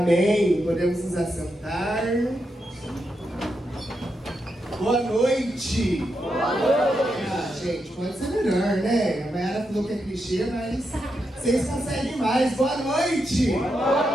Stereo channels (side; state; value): both; normal; correlation 0.84